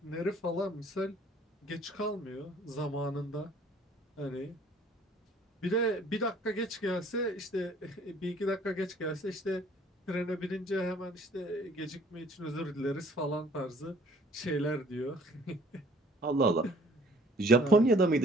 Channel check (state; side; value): normal; both; correlation 0.56